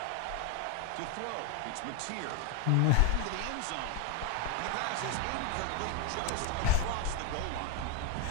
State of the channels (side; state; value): both; different; correlation 0.01